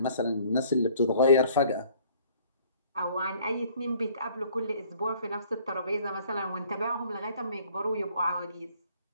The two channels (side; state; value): both; inverted; correlation -0.57